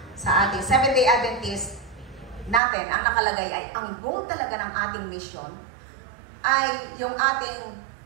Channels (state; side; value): drops out; left; at 2.6 s